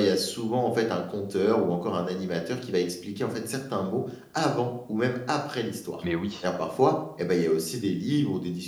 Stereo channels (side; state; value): both; identical; correlation 1.00